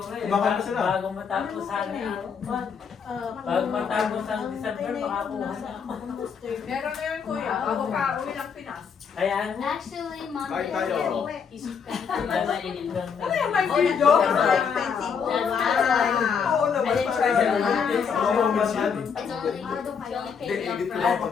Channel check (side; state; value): right; quieter; 6.5 dB